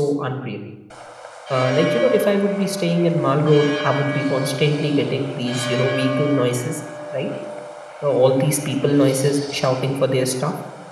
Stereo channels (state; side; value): identical; both; correlation 1.00